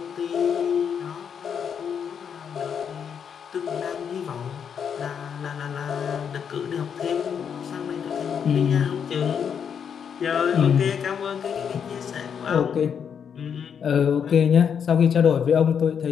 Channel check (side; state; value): right; quieter; 7.5 dB